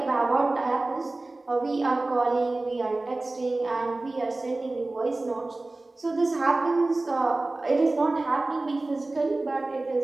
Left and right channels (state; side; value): quieter; left; 3.0 dB